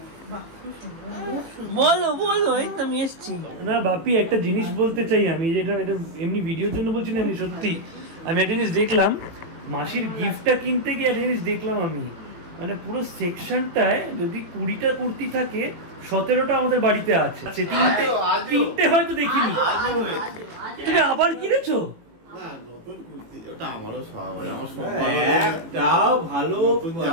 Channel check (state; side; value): late; left; 18 ms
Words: বলো বলো, এই তো আমি এসছি। না বাপি, একটা জিনিস বলতে চাই আমি, যেটা এটা এমনি ভিডিওর জন্য বলছি না, এমনি সত্যি। আমি একটা জিনিস দেখলাম, মাসির গিফটটা কিনতে গিয়ে একটা জিনিস দেখলাম আমি, মানে পুরো সেকশনটায় যদি 20টা কুর্তি থাকে, 17টা আমাদের বাড়িতে আছে। তিনটে হয়তো দেখিনি। তুমি আবার কিনেছো? ওটা আমারও স্বভাব, আমার একটাও ভালো